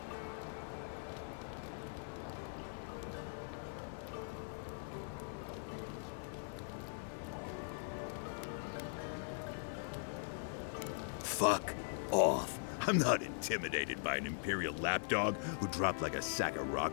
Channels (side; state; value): right; silent; 50 dB below the other